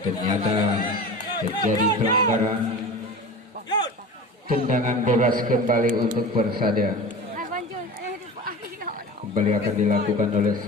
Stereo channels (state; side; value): normal; both; correlation 0.33